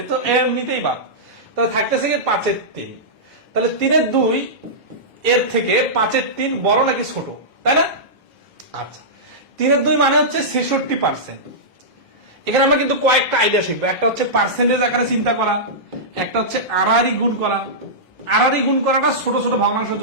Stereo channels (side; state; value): both; normal; correlation -0.14